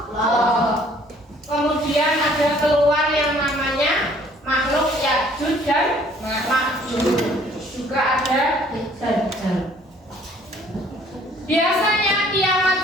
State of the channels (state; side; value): normal; both; correlation 0.58